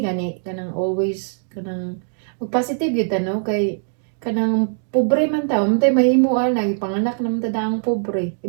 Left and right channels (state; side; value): silent; left; digital silence